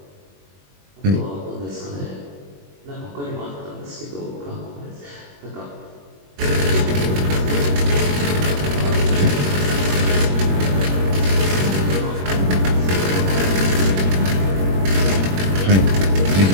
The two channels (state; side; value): late; left; 21 ms